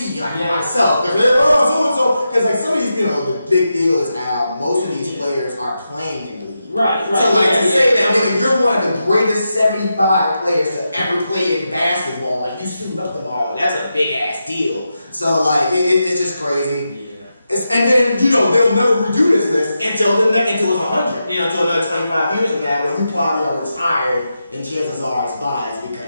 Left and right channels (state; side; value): inverted; both; correlation -0.88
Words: myself. Because like some of these, the big deal is now most of these players are playing in the league. Right. So to say that nigga, you're one of the greatest 75 players to ever play in basketball, like you suit up tomorrow, that's a big ass deal. So like it's just crazy. Yeah. And then they'll never redo this list until it's 100. Until another 25 years from now when you probably are retired and chances are it's biased